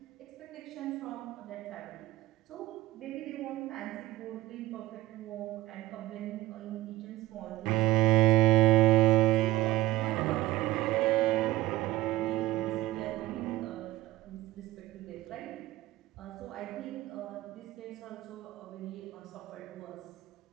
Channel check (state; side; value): quieter; left; 16.7 dB